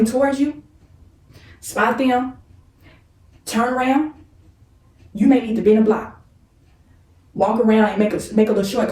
towards you, spot them, turn around, you may need to bend a block. Walk around and make a little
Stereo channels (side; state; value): both; identical; correlation 1.00